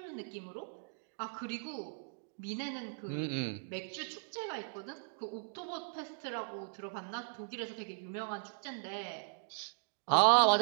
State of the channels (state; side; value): silent; left; digital silence